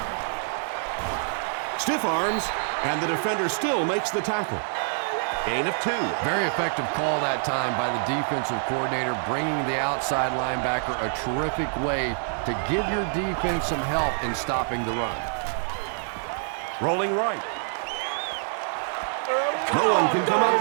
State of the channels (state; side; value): silent; left; digital silence